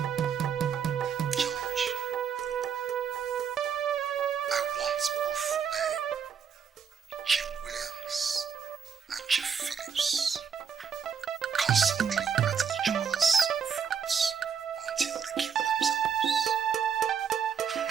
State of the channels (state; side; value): quieter; left; 7.1 dB